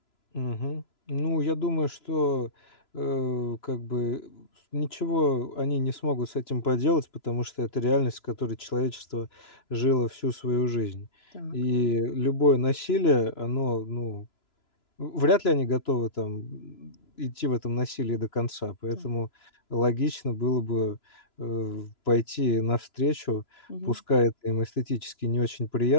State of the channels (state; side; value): late; right; 3.0 ms